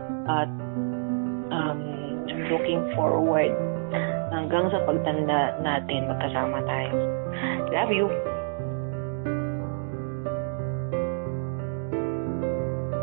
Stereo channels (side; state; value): left; silent; digital silence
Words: at looking forward hanggang sa pagtanda natin magkasama tayo. Love you!